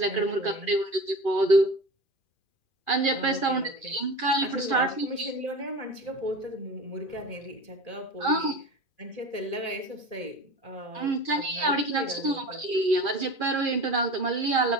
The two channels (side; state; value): right; late; 2.4 ms